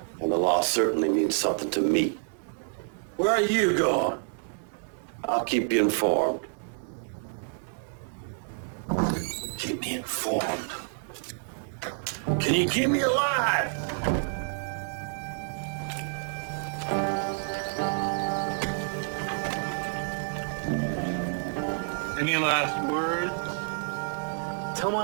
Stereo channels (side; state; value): left; silent; digital silence